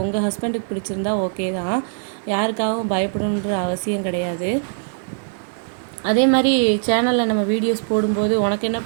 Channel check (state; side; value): silent; left; digital silence